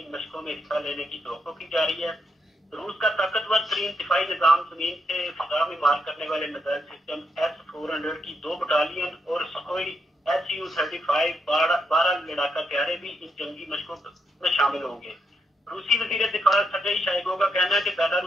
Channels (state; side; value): normal; both; correlation 0.80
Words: मशकों में हिस्सा लेने की तवक्को की जा रही है। रूस का ताकतवर तरीन दिफाई निजाम जमीन से फिजा में मार करने वाले मिसाइल सिस्टम S-400 की 2 बटालियन और सुखोई Su-35 12 लड़ाका तैयारे भी इन जंगी मशकों में शामिल होंगे। रूसी वजीर दिफा सर्गेई शोइगु का कहना है कि